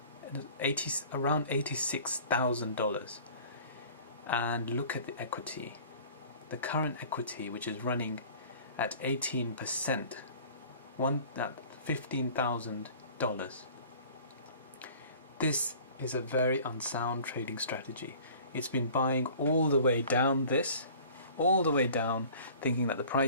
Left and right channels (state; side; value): inverted; both; correlation -0.47